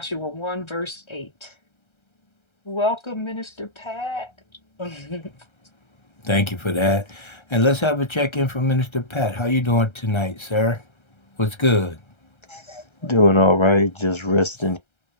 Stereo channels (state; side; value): late; right; 1.3 ms